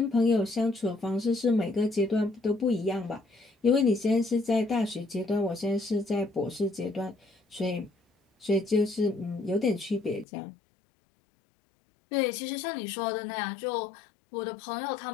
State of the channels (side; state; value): right; drops out; at 10.2 s